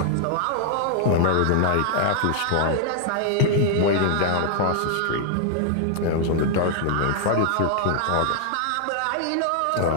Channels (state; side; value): different; both; correlation -0.01